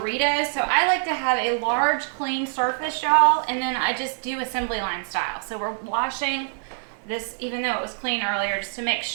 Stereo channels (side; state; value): left; silent; digital silence